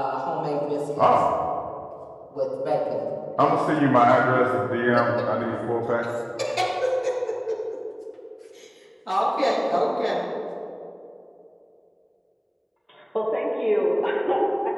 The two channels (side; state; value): both; identical; correlation 1.00